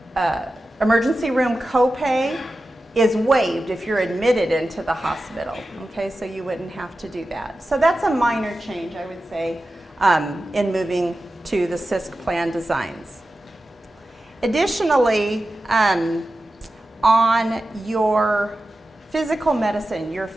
emergency room copay is waived if you're admitted into the hospital, okay, so you wouldn't have to do that. So that's a minor change, I would say, in moving to the CISC plan designs. Additionally, on your physical medicine, your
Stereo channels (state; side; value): normal; both; correlation 0.93